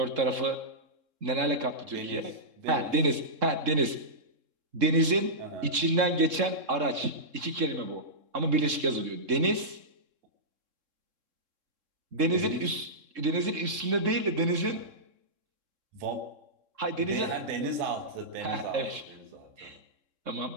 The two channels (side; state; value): left; late; 3.7 ms